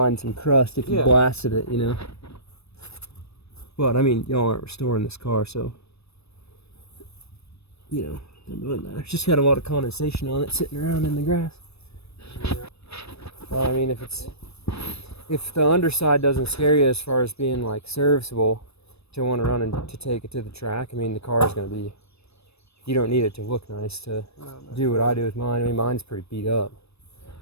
some crust if you Yeah. blasted it, you know. But I mean, y'all aren't restoring this car, so you know, it doesn't matter. It's just got a lot of condensation on it sitting around in the grass. Yeah. Well, I mean, if the underside doesn't scare you as far as being like serviceable to want to run and to take it to the track, I mean, the car is going to be. You don't need it to look nice to do what I do with mine. I mean, mine's pretty beat up.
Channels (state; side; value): late; right; 0.79 ms